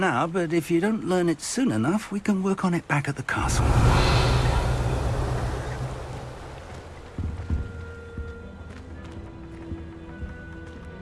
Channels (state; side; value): identical; both; correlation 1.00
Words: but if you don't learn it soon enough, we can work on it back at the castle.